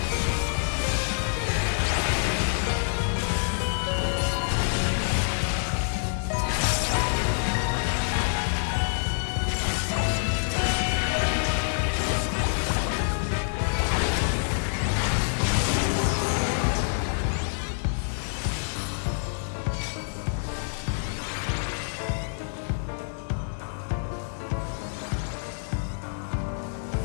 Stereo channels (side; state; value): right; silent; 60 dB below the other